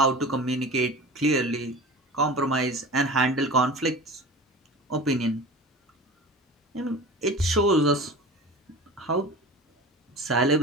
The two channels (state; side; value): normal; both; correlation 0.35